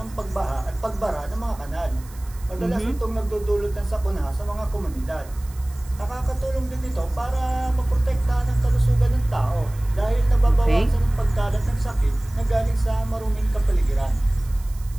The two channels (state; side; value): noise; right; hiss, 22 dB below the sound